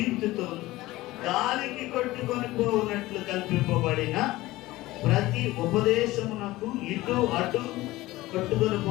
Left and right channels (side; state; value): right; quieter; 18.2 dB